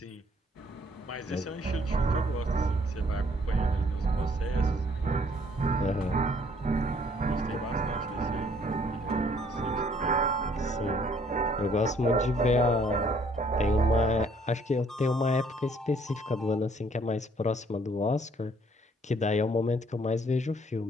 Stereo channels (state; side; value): normal; both; correlation 0.62